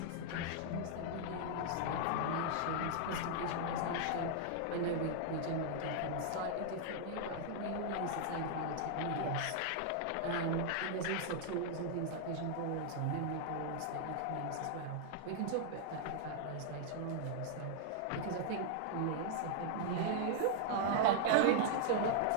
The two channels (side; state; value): both; different; correlation -0.01